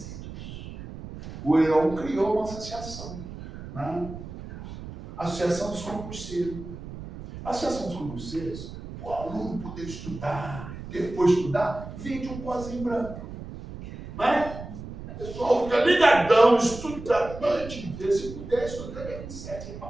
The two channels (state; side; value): noise; right; rumble, 12 dB below the sound